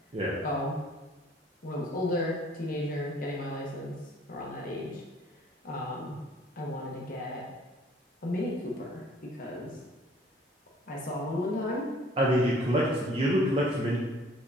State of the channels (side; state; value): both; normal; correlation 0.56